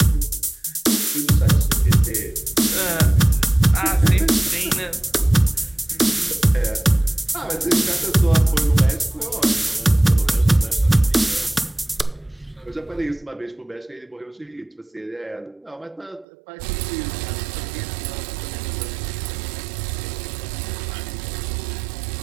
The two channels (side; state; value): left; drops out; at 16.2 s